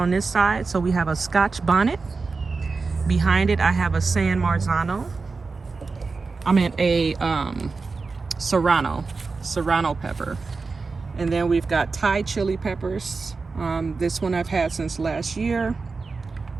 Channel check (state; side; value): quieter; left; 4.3 dB